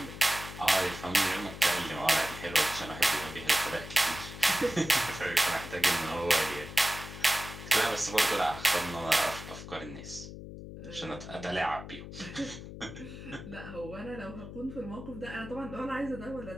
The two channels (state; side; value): noise; left; hum, 11 dB below the sound